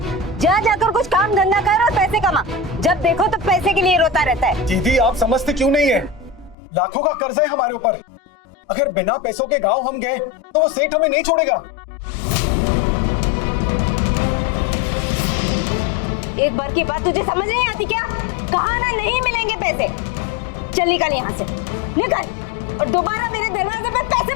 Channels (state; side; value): drops out; right; at 6.6 s